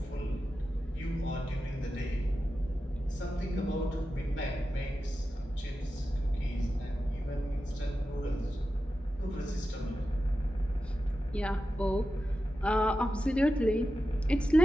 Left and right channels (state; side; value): normal; both; correlation 0.91